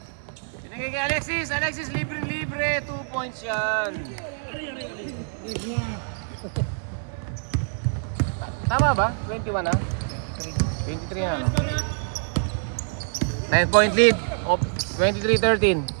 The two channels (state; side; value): silent; left; digital silence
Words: Pinagay kay Alexis libre. 2 points yan. Tama ba? 21 na? 23 na. 9-point lead of 23-13.